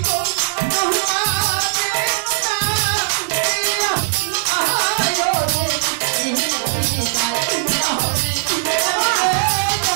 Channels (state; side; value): silent; left; digital silence